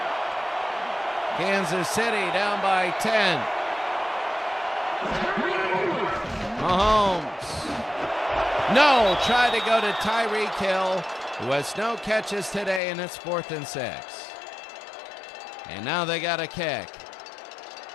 Kansas City down by 10. Mahomes. No, tried to go to Tyreek Hill, who has no catches today, and it's 4th and 6. And now they got a kick.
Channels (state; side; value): drops out; right; at 12.8 s